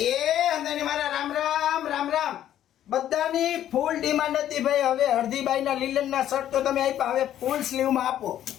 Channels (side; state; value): right; quieter; 11.4 dB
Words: એ અંદાની મારા રામ રામ રામ રામ. બધાની ફૂલ ડિમાન્ડ હતી ભાઈ. હવે હરદીબાઈના લીલનના શર્ટ તો તમે આપ્યા, હવે ફૂલ સ્લીવમાં આપો.